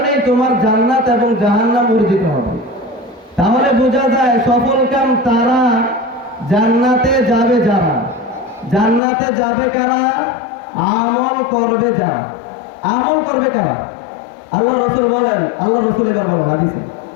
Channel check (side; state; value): right; drops out; at 9.0 s